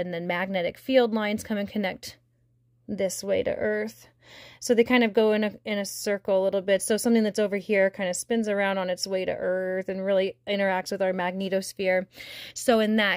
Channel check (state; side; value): identical; both; correlation 1.00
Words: then magnetic field lines come and connect this way to Earth. So they kind of go in a circle a little bit. So something that's over here kind of spins around on its way to Earth and really interacts with our magnetosphere. So in